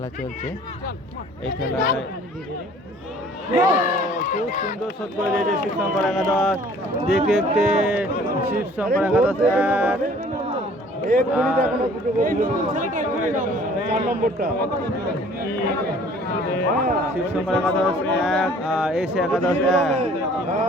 চলছে। এই খেলায় খুব সুন্দর শট করে দিয়েছে শিবশঙ্কর একাদশ। দেখতে দেখতে শিবশঙ্কর একাদশ শিবশঙ্কর একাদশ 1 আর এসে একাদশ 1।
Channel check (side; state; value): both; normal; correlation 0.53